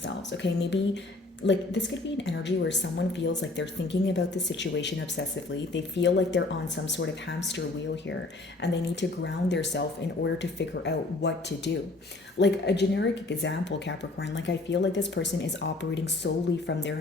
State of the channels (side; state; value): right; quieter; 3.1 dB